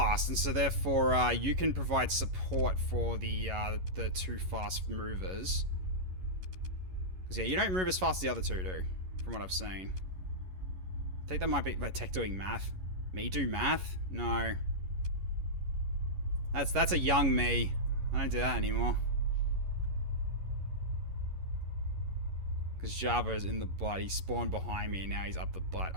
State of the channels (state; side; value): late; left; 11 ms